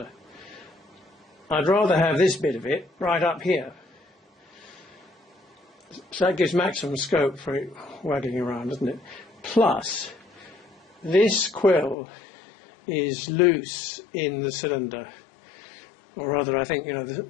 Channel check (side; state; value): right; drops out; at 12.0 s